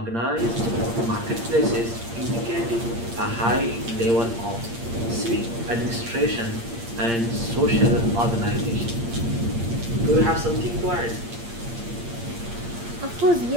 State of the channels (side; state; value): left; late; 8.6 ms